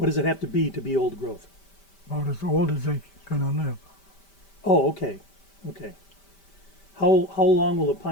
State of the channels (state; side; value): late; right; 5.1 ms